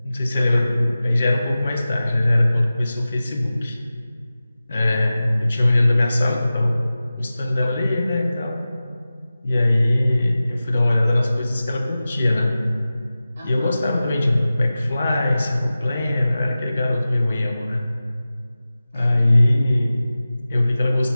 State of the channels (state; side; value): inverted; both; correlation -0.96